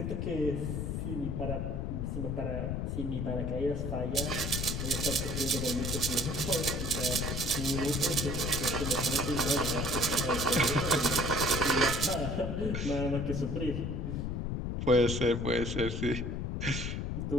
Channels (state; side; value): noise; left; rumble, 2 dB below the sound